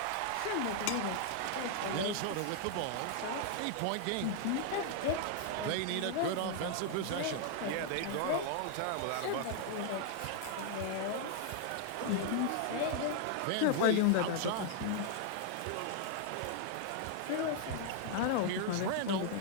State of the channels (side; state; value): both; different; correlation 0.00